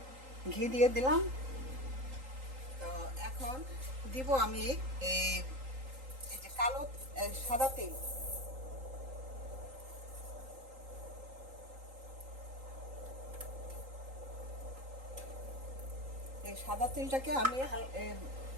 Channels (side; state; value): left; late; 3.8 ms